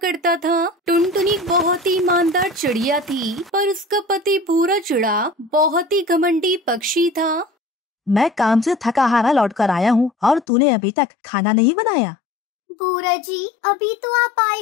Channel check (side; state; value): right; drops out; at 10.5 s